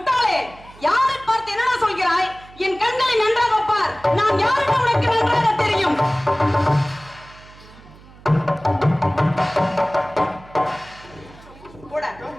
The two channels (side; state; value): right; noise; hum, 22 dB below the sound